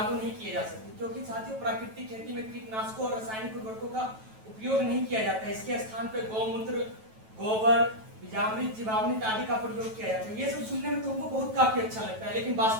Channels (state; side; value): late; left; 9.2 ms